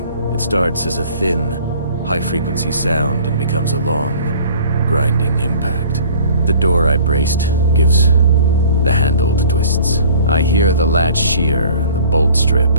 It starts as a thin, high-frequency sound and becomes a long, grinding impact. The door I braced gives the handled twists. I hear the latch shear and the bolt strip.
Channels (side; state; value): both; inverted; correlation -0.50